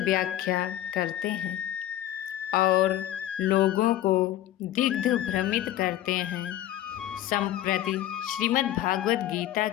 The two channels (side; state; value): right; quieter; 13.2 dB